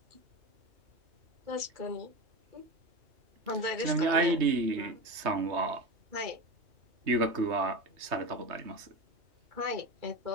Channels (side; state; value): left; late; 3.2 ms